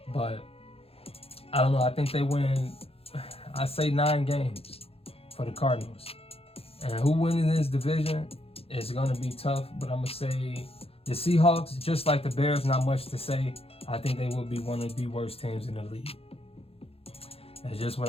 But I don't know. I think they win, I say 9 games for the Cardinals. And who winning this division is going to be tough, but I'm going to say the Seahawks, just like the Bears, not much to say. I think they will be one of the worst teams in the league. That's just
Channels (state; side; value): late; right; 0.28 ms